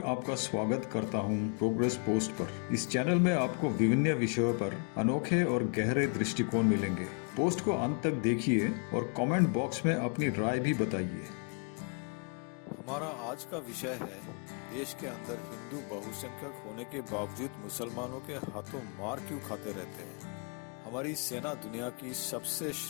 आपका स्वागत करता हूं प्रोग्रेस पोस्ट पर। इस चैनल में आपको विभिन्न विषयों पर अनोखे और गहरे दृष्टिकोण मिलेंगे। पोस्ट को अंत तक देखिए और कमेंट बॉक्स में अपनी राय भी बताइए। हमारा आज का विषय है, देश के अंदर हिंदू बहुसंख्यक होने के बावजूद मुसलमानों के हाथों मार क्यों खाते रहते हैं। हमारी सेना दुनिया की सबसे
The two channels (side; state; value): right; quieter; 39.3 dB